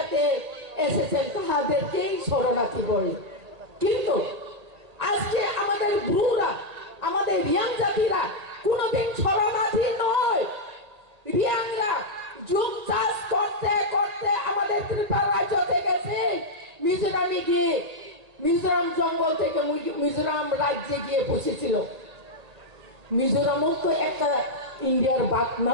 এসেছেন তাদেরকেই শরণার্থী বলে কিন্তু আজকে আমাদের ব্রুরা, আমাদের রিয়াং জাতিরা কোনোদিন শরণার্থী নয়। রিয়াংরা যুগ চাষ করতে করতে আমাদের ত্রিপুরা রাজ্য থেকে মিজোরামে গিয়ে, মিজোরাম জঙ্গল থেকে মিজোরাম রাজ্যে গিয়ে বসেছিল। মিজোরামও তো একটা ইন্ডিয়ার ভাগ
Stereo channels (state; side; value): late; left; 1.8 ms